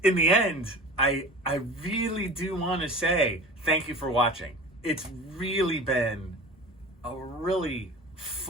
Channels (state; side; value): normal; both; correlation 0.38